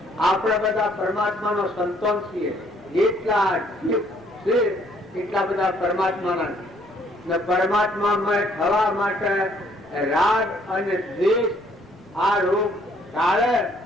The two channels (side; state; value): both; normal; correlation 0.64